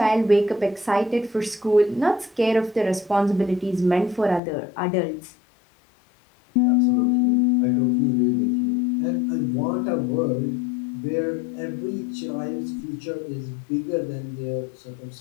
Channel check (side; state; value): right; drops out; at 4.4 s